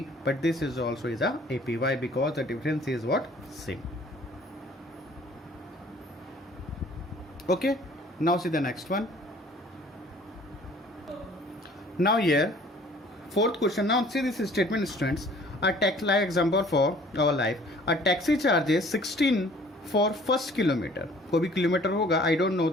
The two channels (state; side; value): normal; both; correlation 0.53